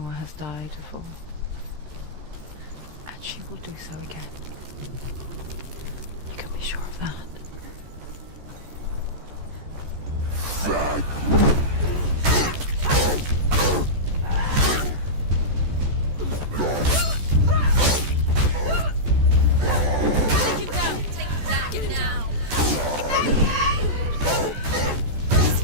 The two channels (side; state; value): left; late; 14 ms